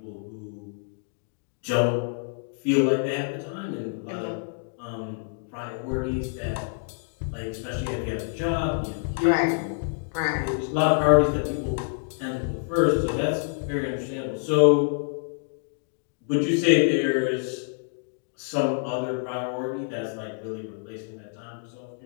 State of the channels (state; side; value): silent; right; digital silence